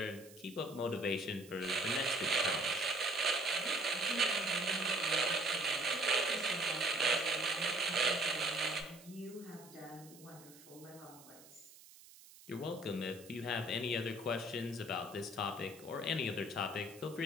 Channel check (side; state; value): right; noise; hiss, 21 dB below the sound